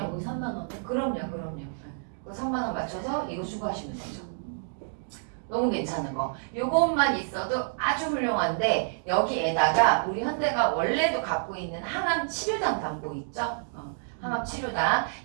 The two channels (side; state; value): left; silent; digital silence